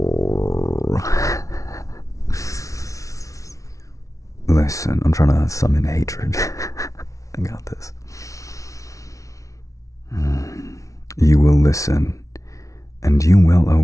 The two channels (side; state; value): right; late; 0.16 ms